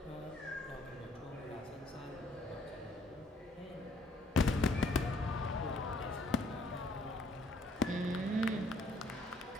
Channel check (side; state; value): both; normal; correlation 0.64